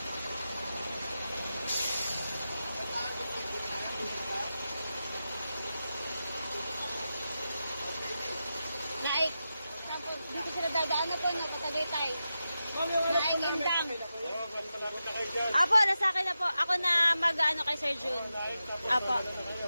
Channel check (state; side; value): inverted; both; correlation -0.90